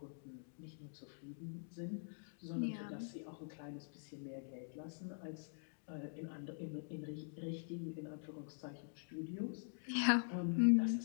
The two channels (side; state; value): right; silent; digital silence